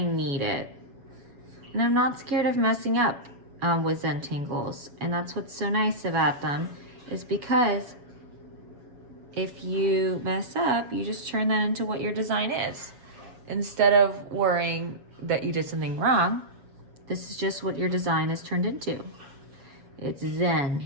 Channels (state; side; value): late; left; 7.2 ms